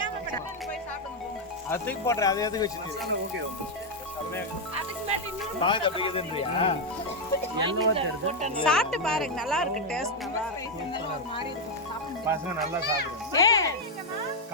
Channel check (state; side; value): normal; both; correlation 0.01